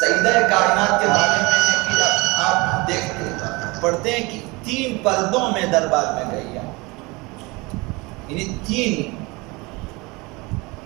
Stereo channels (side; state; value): left; quieter; 24.9 dB